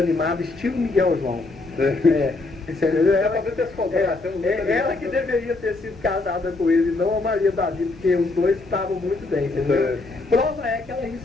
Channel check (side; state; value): right; quieter; 3.3 dB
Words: estilo Miguel João. Você entendeu? Ela que deveria ter sido casada com ele, não a Maria Davi, porque os dois estavam muito bem, entendeu? Prova é que ela